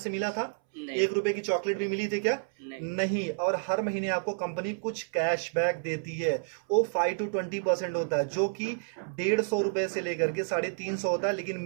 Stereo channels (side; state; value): left; silent; 58 dB below the other